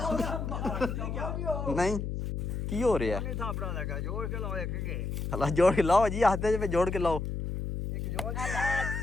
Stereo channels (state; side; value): noise; left; hum, 3 dB below the sound